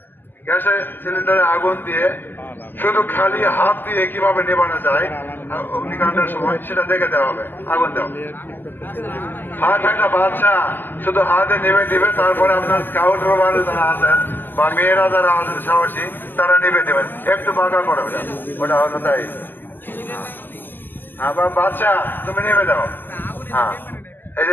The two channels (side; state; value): right; late; 0.090 ms